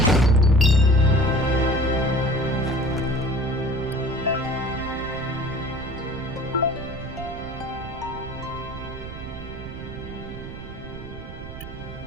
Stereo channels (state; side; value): noise; right; rumble, 12 dB below the sound